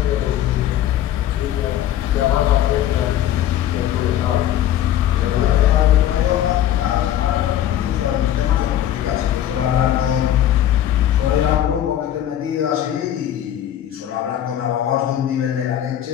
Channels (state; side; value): quieter; right; 11.6 dB